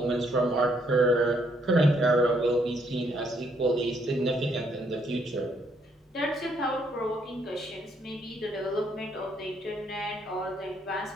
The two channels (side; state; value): both; normal; correlation 0.71